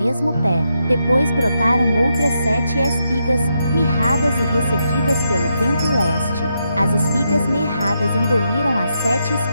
pé. Depois brotaram outras 7 espigas, mirradas e ressequidas pelo vento leste. As espigas mirradas engoliram as 7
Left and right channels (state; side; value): inverted; both; correlation -0.82